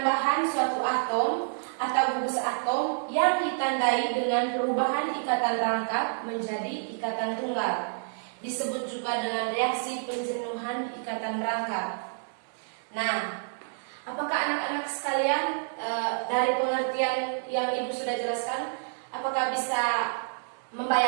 suatu atom atau gugus atom yang ditandai dengan perubahan ikatan rangkap menjadi ikatan tunggal. Disebut juga dengan reaksi penjenuhan ikatan rangkap. Nah, apakah anak-anak sekalian dari pengertian yang Ibu sudah jelaskan, apakah bisa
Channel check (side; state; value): left; silent; digital silence